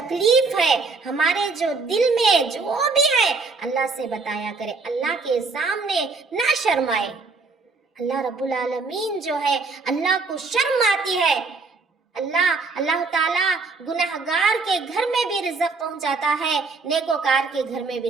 ہے، ہمارے جو دل میں جو بھی ہے اللہ سے بتایا کرے، اللہ کے سامنے نہ شرمائے۔ اللہ رب العالمین جو ہے اللہ کو شرم آتی ہے۔ اللہ تعالیٰ گنہگار کے گھر میں بھی رزق پہنچاتا ہے، نیکوکار کے گھر میں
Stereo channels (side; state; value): left; quieter; 4.1 dB